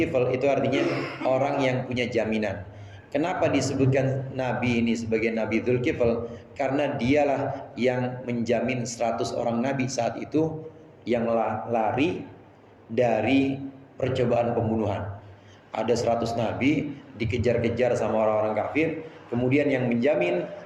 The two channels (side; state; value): both; identical; correlation 1.00